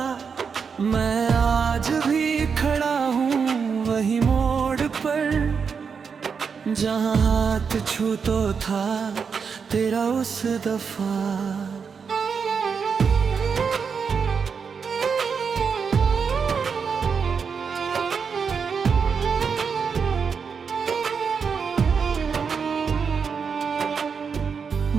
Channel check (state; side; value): quieter; left; 6.0 dB